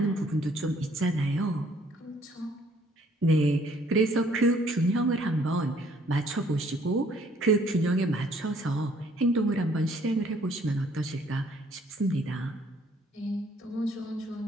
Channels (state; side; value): normal; both; correlation 0.62